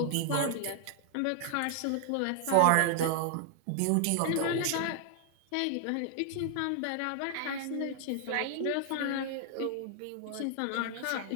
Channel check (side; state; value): both; different; correlation 0.00